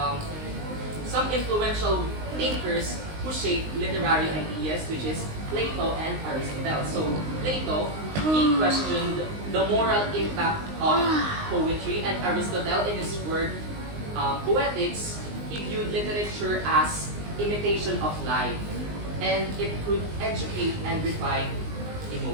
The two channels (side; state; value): left; late; 19 ms